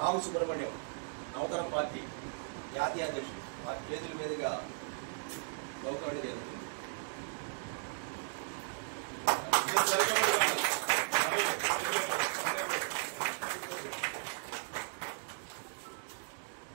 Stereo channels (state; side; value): silent; left; digital silence